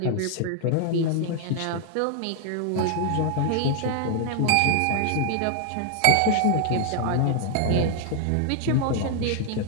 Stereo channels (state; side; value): different; both; correlation 0.00